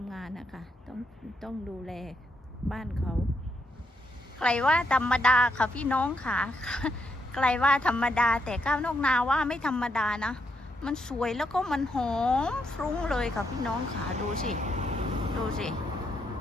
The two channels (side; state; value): both; normal; correlation 0.78